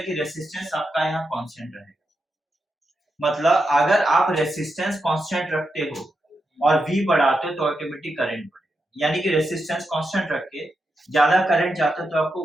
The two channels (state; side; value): normal; both; correlation 0.86